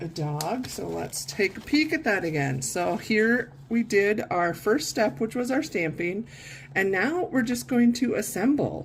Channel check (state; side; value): identical; both; correlation 1.00